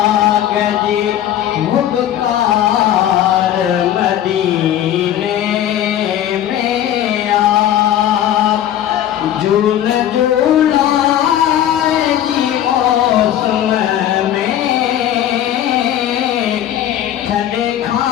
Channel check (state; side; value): quieter; right; 11.4 dB